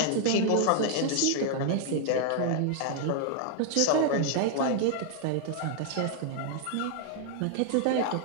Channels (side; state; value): both; different; correlation 0.00